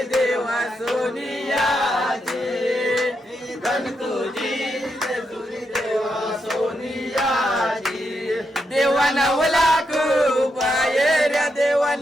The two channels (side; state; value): both; normal; correlation 0.83